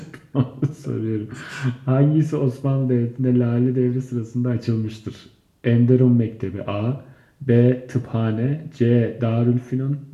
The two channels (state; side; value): identical; both; correlation 1.00